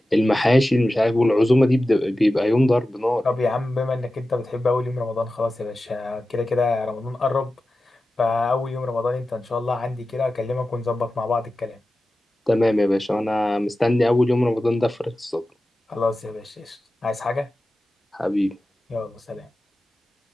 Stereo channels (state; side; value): normal; both; correlation 0.94